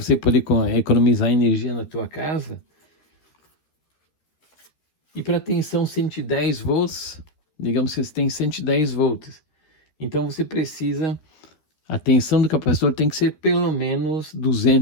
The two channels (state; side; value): late; right; 13 ms